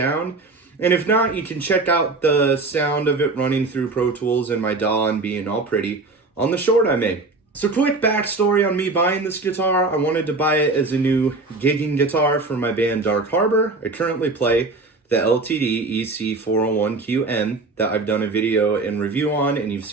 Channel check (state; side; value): quieter; left; 3.5 dB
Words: And if not, you can check out the sound of it running through Pro Tools and my DAW and being all pretty on the short I made. So quick backstory on me buying this guitar. I wanted to buy it as a new gigging guitar for my band Dark Harbor. I currently play the LTD EC401QM that I've done a video and review on and you've